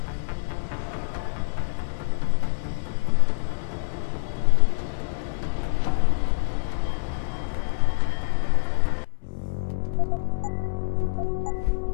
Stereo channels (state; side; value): silent; right; digital silence